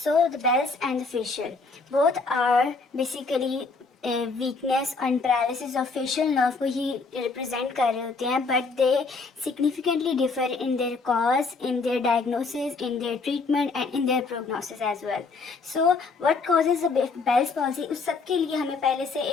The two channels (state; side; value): quieter; right; 4.1 dB